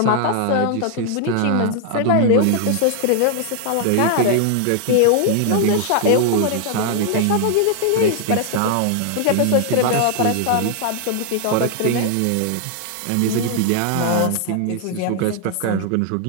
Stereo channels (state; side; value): different; both; correlation 0.00